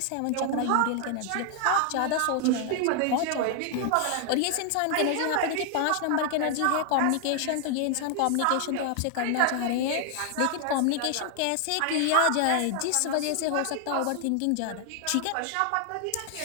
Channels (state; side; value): different; both; correlation 0.00